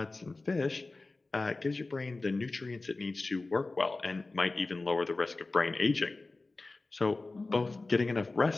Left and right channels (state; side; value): quieter; right; 3.3 dB